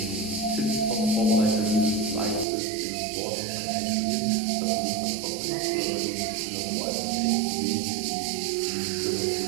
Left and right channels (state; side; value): drops out; left; at 2.5 s